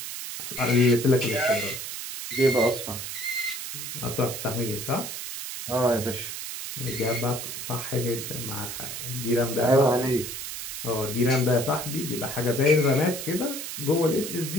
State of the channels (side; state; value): right; noise; hiss, 7 dB below the sound